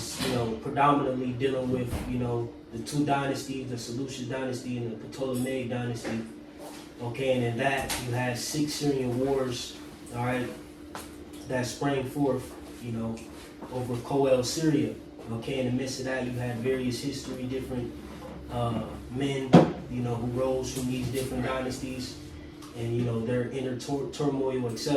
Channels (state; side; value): identical; both; correlation 1.00